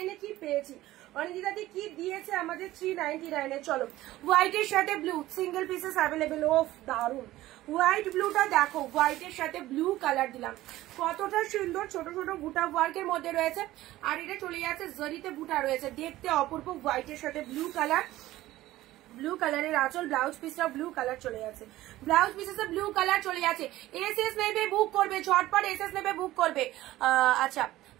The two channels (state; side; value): quieter; left; 16.1 dB